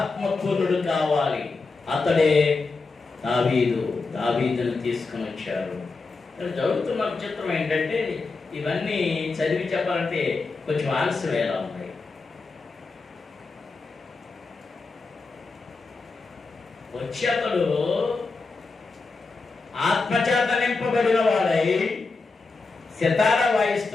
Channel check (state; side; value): quieter; right; 4.0 dB